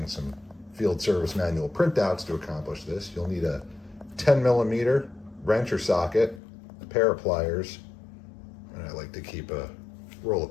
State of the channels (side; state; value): right; drops out; at 6.4 s